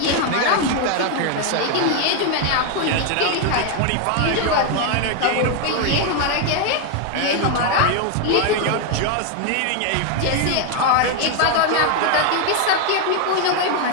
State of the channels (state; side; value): different; both; correlation 0.01